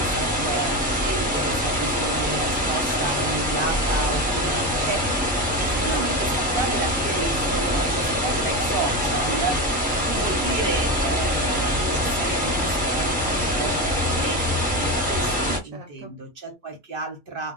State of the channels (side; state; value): both; normal; correlation 0.18